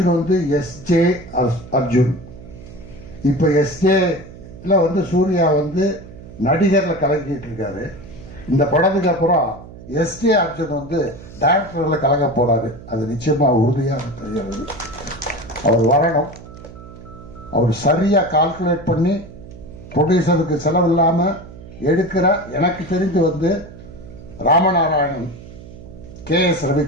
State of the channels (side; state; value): right; noise; hum, 17 dB below the sound